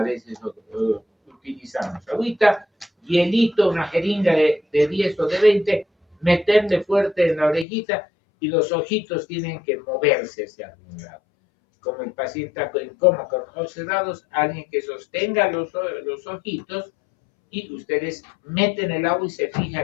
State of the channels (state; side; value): drops out; right; at 7.7 s